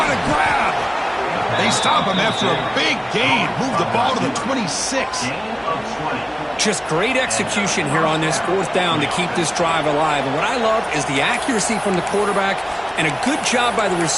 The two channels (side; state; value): both; identical; correlation 1.00